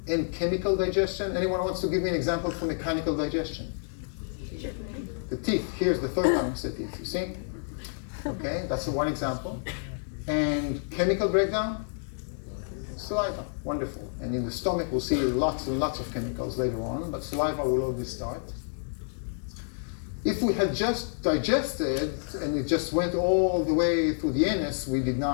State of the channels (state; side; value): silent; right; digital silence